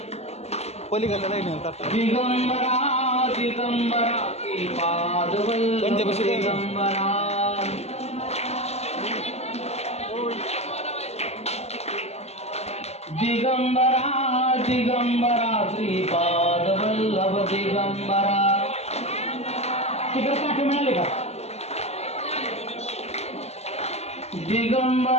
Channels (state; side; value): late; right; 0.31 ms